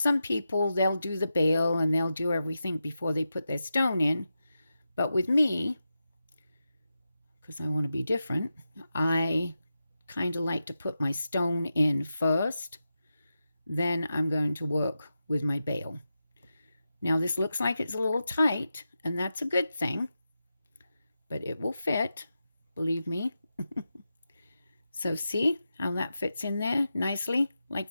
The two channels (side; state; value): both; inverted; correlation -0.90